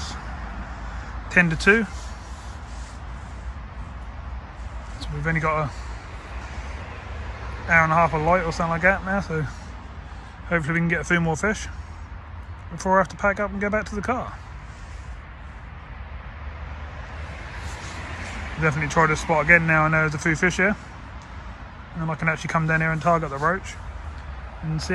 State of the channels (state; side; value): identical; both; correlation 1.00